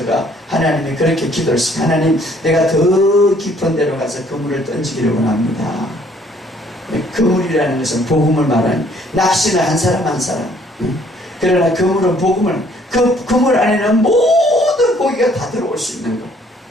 하나님이 그렇게 기도를 했어요. 하나님 내가 더 깊은 데로 가서 그물을 던지기를 원합니다. 그물이라는 것은 복음을 말하는 낚시는 한 사람 한 사람. 그러나 그물은 복음을 그 그물 안에는 모든 고기가 다 들어올 수 있는 것.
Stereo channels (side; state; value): both; normal; correlation 0.61